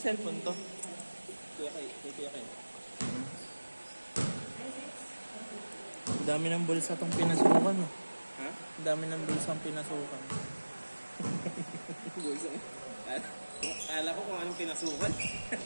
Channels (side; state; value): both; inverted; correlation -1.00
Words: to? Kuya kay. Ang dami ng bulsa tong pinasukan. Oh. Ha? Ang dami ng bulsa ang pinasukan. Kala ko kung anong pinasukan.